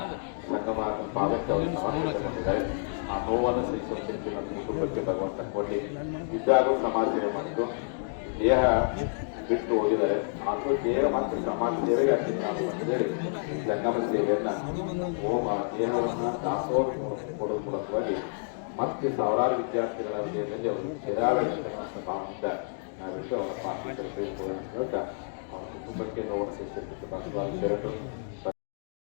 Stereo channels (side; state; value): right; silent; digital silence